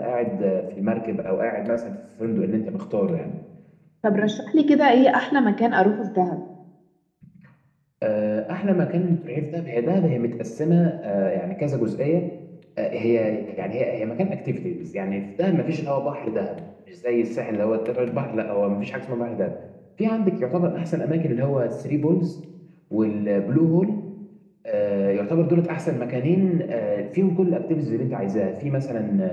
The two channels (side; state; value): both; identical; correlation 1.00